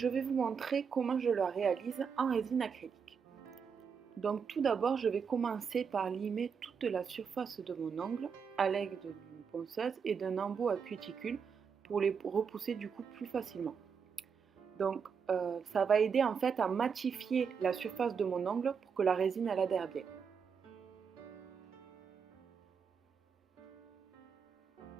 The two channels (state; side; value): quieter; left; 6.3 dB